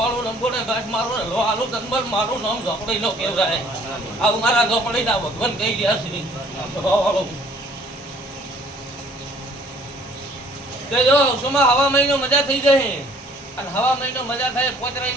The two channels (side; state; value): both; normal; correlation 0.57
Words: લંબોને ઘાસ મારું ને લો આલુ તનબર મારું નામ ઝોપડી નો કહેવાય. આવું મારા ઝોપડીના ભગવાન કહી ગયા છે ભાવવાળું. જો સોમાં હવા મહિનો મજા થઈ જાય. અને હવા મહિનો મજા થાય 5